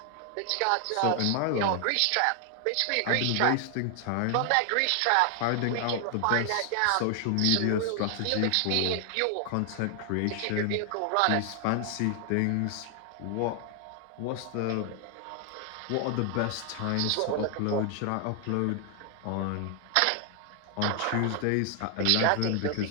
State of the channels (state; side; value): different; both; correlation 0.00